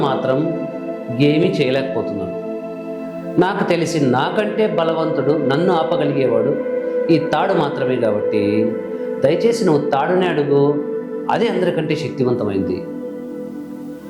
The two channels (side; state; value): both; identical; correlation 1.00